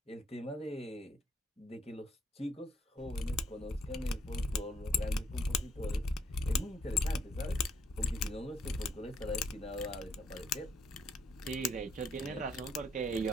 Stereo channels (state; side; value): normal; both; correlation 0.71